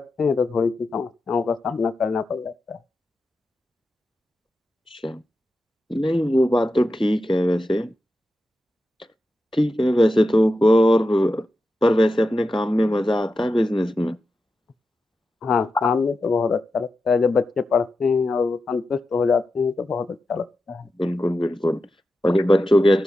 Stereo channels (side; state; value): both; normal; correlation 0.90